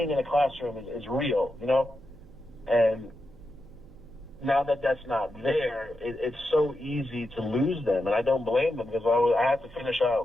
in a classroom is real, and now that that's not there, it's so easy to lose them, and I don't blame them because I had to finish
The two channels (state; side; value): noise; right; hum, 22 dB below the sound